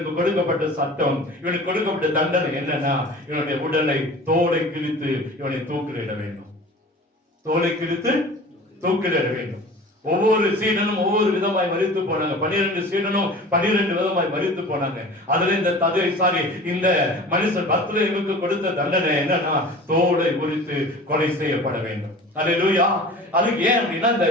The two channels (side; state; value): both; normal; correlation 0.40